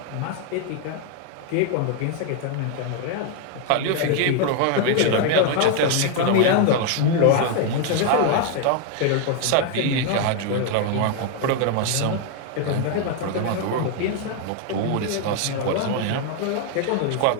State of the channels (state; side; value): different; both; correlation 0.01